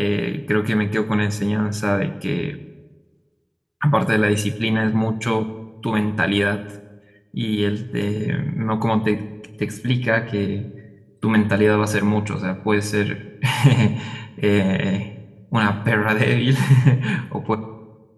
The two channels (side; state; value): both; identical; correlation 1.00